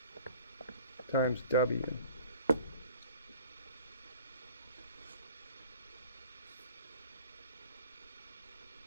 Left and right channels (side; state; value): both; inverted; correlation -0.47